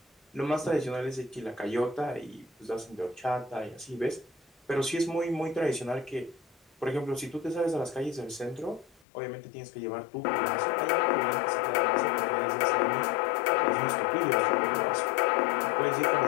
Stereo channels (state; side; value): drops out; right; at 9.1 s